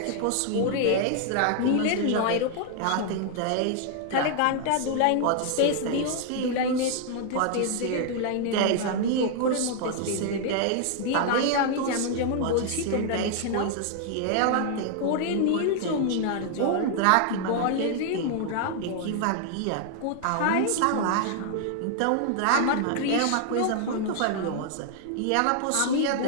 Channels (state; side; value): different; both; correlation 0.00